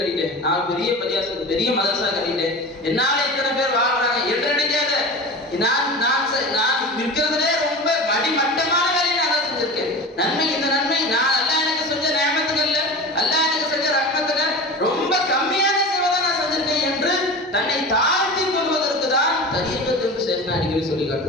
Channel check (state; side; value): normal; both; correlation 0.32